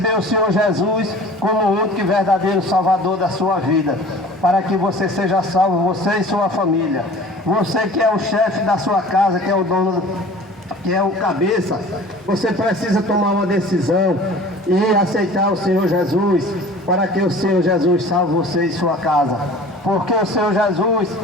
o Senhor Jesus como o único e verdadeiro Salvador da sua vida, para que você seja salvo, você e sua família. Você que é o chefe da sua casa, que é o dono, que é o cabeça, você precisa tomar uma decisão e aceitar o Senhor Jesus, para que o Senhor Jesus salve você e sua casa. Porque o Senhor Jesus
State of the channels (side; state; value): both; normal; correlation 0.44